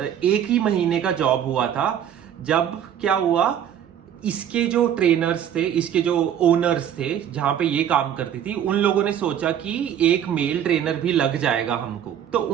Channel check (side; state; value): left; quieter; 9.6 dB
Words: 1 ही महीने का जॉब हुआ था, जब क्या हुआ, इसके जो ट्रेनर्स थे, इसके जो ओनर्स थे जहां पे ये काम करती थी, उन लोगों ने सोचा कि एक मेल ट्रेनर भी लग जाएगा हमको। तो